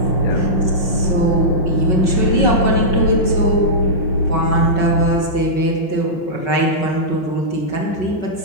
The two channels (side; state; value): right; late; 5.3 ms